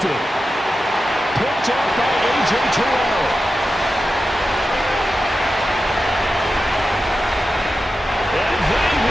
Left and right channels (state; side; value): normal; both; correlation 0.92